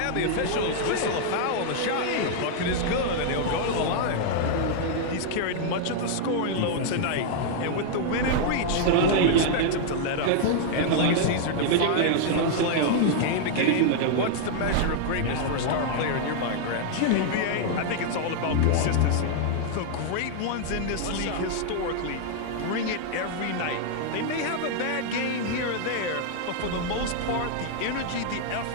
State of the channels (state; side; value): different; both; correlation -0.01